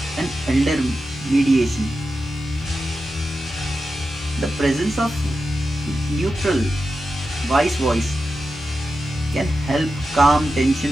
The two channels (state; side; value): normal; both; correlation 0.91